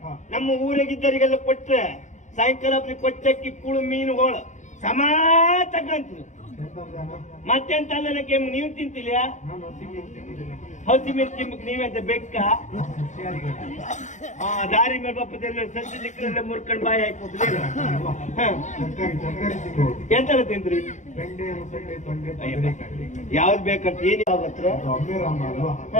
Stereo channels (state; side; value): late; right; 0.35 ms